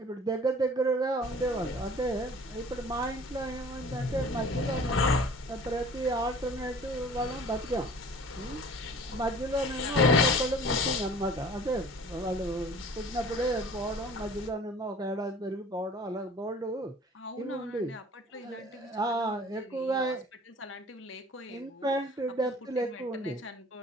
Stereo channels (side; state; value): both; normal; correlation 0.47